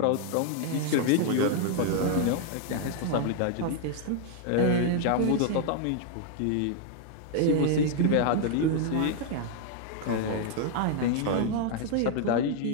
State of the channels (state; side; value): different; both; correlation 0.00